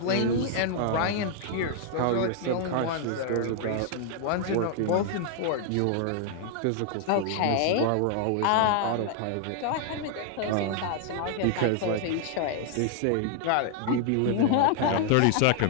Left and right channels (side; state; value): both; different; correlation 0.00